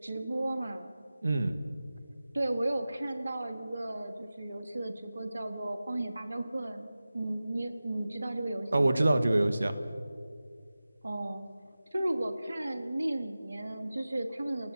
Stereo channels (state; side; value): inverted; both; correlation -0.96